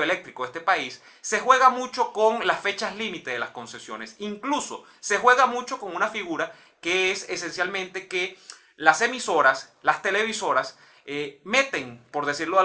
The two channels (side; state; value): both; identical; correlation 1.00